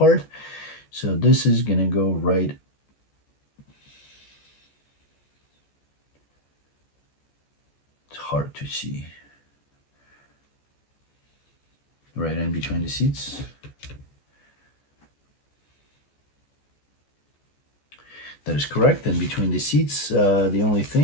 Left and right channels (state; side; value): late; right; 14 ms